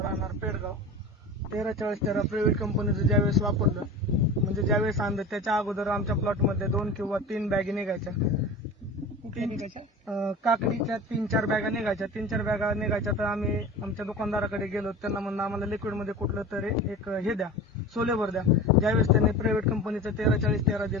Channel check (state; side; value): normal; both; correlation 0.34